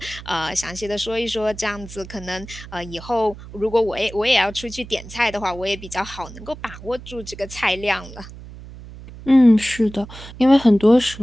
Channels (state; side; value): noise; right; hum, 15 dB below the sound